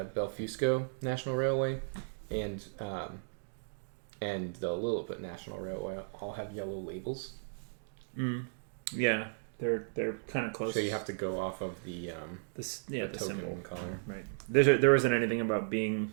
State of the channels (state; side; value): silent; left; digital silence